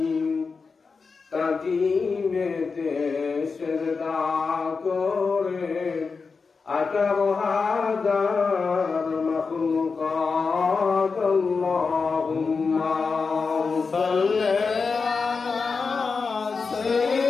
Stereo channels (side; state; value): right; quieter; 4.8 dB